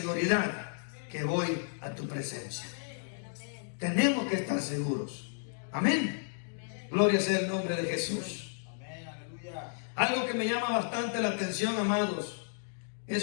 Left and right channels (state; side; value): silent; right; digital silence